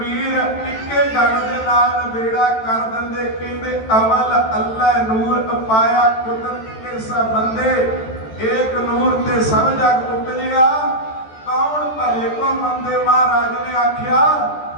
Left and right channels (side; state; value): right; late; 14 ms